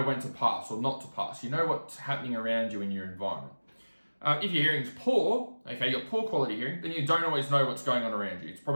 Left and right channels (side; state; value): both; inverted; correlation -1.00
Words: when to pass or not to pass. You know what's happening around you in your environment. If your hearing's poor, you've got poor quality hearing, then you don't always know what's going on around you. It's